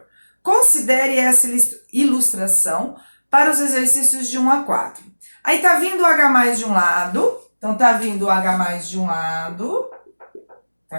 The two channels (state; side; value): inverted; both; correlation -1.00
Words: Considere essa ilustração para os exercícios de 1 a 4. Aí tá vindo o H+ de um lado, então tá vindo o H+ de um lado, tá